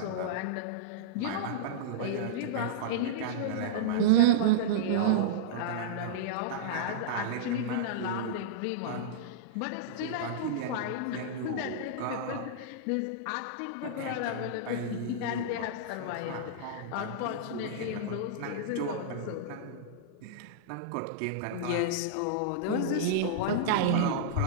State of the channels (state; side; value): different; both; correlation -0.03